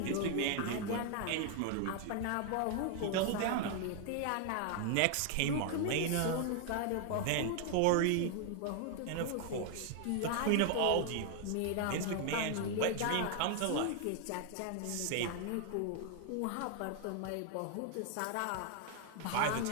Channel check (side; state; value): both; different; correlation 0.00